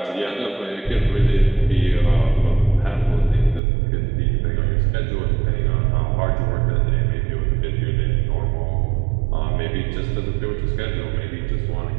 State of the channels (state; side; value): drops out; left; at 3.6 s